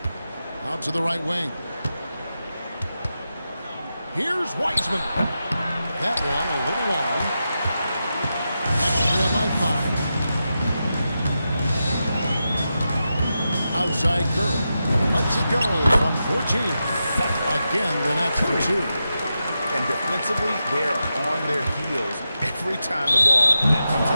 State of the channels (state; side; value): inverted; both; correlation -0.89